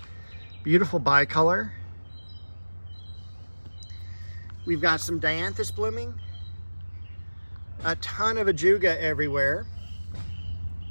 Beautiful bicolor. We've got some dianthus blooming. A ton of ajuga everywhere.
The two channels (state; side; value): inverted; both; correlation -1.00